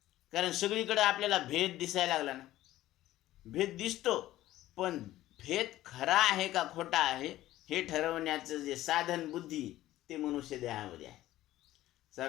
कारण सगळीकडे आपल्याला भेद दिसायला लागला ना, भेद दिसतो, पण भेद खरा आहे का खोटा आहे हे ठरवण्याचं जे साधन बुद्धी ते मनुष्य देहामध्ये आहे।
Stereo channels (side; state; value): right; quieter; 15.0 dB